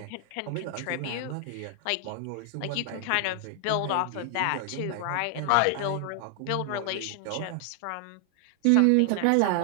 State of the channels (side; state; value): both; different; correlation 0.00